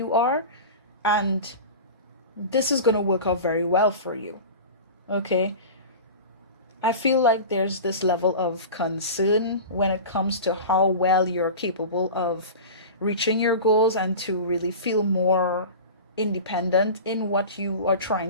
are, and this is going to work out very well for you. Okay? I feel like there's this level of concern when it comes to how well you're capable of reaching your goals and to really feel more independent in what you are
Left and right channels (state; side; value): inverted; both; correlation -0.32